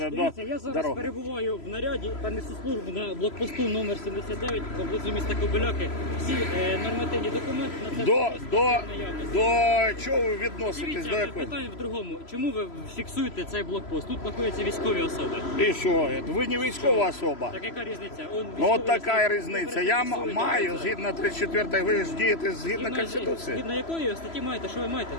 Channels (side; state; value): right; late; 3.0 ms